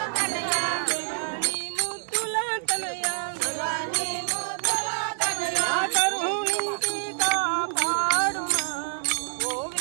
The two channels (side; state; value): left; silent; digital silence